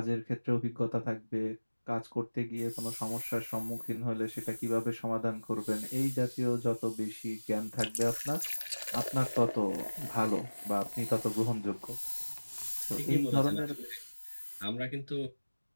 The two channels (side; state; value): both; inverted; correlation -1.00